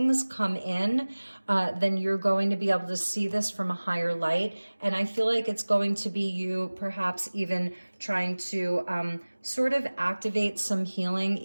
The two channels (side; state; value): both; inverted; correlation -1.00